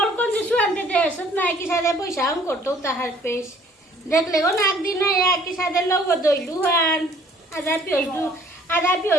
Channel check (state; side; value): normal; both; correlation 0.57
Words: kon sesuatu deh setnai kisah deh boy sang korto tahar pes দেখলে গো নাক দিন একই সাথে লোক দইলুহান আধা